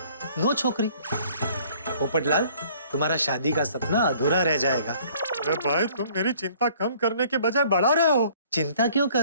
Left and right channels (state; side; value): inverted; both; correlation -0.57